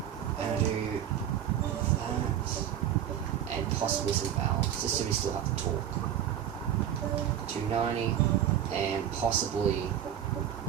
and I do that and possibly some valves just so we still have the torque. 290 and possibly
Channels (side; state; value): left; quieter; 10.1 dB